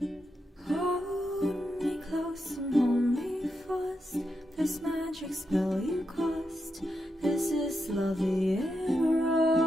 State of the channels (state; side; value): normal; both; correlation 0.85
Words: Hold me close and hold me fast. This magic spell you cast. This is love in